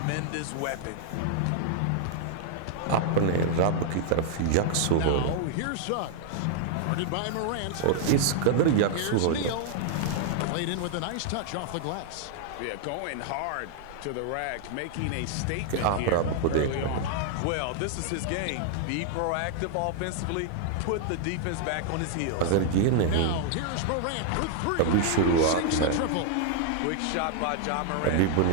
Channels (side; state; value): both; different; correlation -0.01